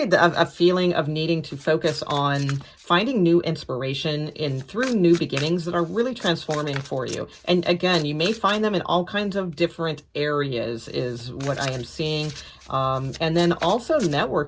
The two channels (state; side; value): identical; both; correlation 1.00